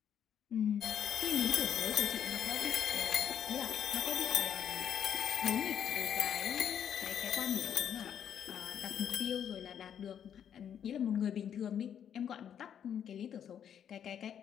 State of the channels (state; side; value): quieter; right; 8.9 dB